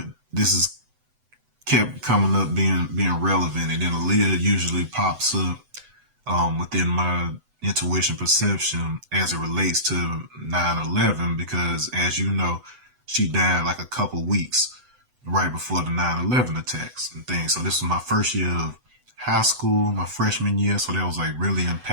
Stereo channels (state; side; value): late; left; 7.9 ms